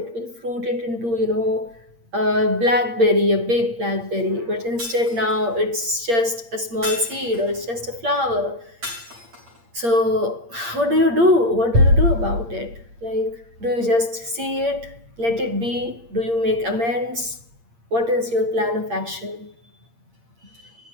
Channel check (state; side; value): late; left; 8.6 ms